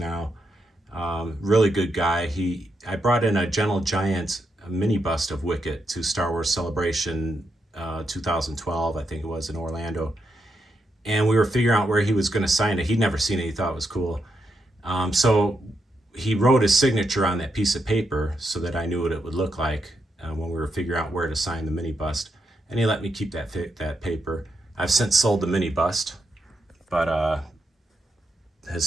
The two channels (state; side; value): normal; both; correlation 0.82